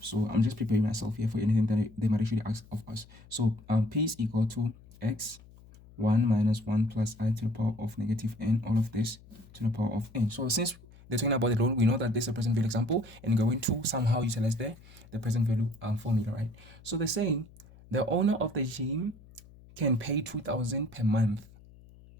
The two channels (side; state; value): left; noise; hum, 23 dB below the sound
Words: so I'm just preparing myself here for anything that they might actually ask of us. So P is equal to x 1 minus 1 plus I to the power of negative n, all of this to the power of n. So since they're talking about the loan, we know that this is a present value example, and we're going to somehow utilize the present value formula, right? So they're saying the owner of the gym can pay 2,000 per month.